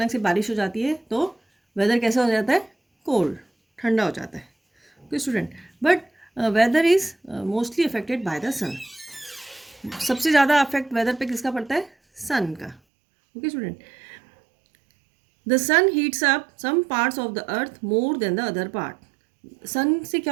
से बारिश हो जाती है तो वेदर कैसा हो जाता है? कोल्ड, ठंडा हो जाता है। Okay student, but weather is mostly affected by the sun. सबसे ज़्यादा अफेक्ट वेदर पे किसका पड़ता है? सन का। Okay student, the sun heats up some parts of the earth more than the other part. Sun से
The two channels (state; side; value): drops out; left; at 12.8 s